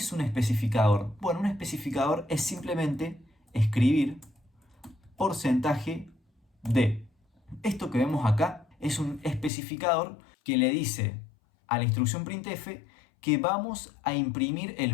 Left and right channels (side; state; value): right; drops out; at 9.5 s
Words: un especificador? Bueno, un especificador es simplemente escribir porcentaje de. Esto que vemos acá es un especificador que le dice a la instrucción printf que vamos a imprimir el